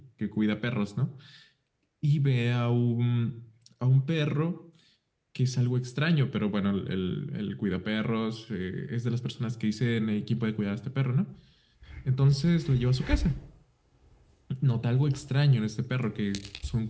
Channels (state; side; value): identical; both; correlation 1.00